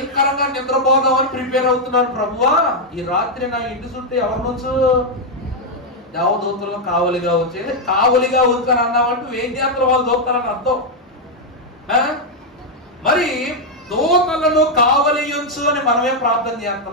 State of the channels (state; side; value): normal; both; correlation -0.01